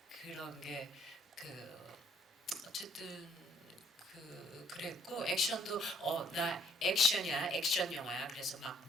그런 게 어쨌든 그랬고, 액션도 나 액션이야, 액션 영화야. 그래서 막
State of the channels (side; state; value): both; normal; correlation 0.63